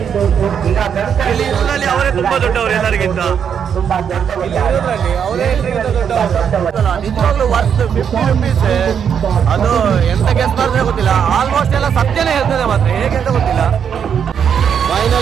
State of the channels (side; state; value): left; quieter; 7.7 dB